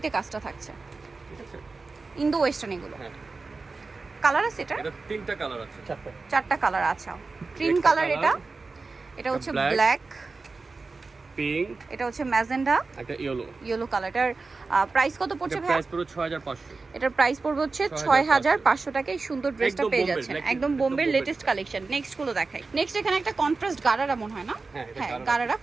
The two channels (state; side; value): quieter; left; 4.0 dB